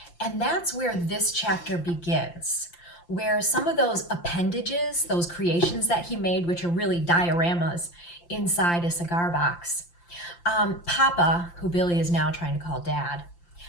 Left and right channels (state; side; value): late; right; 5.8 ms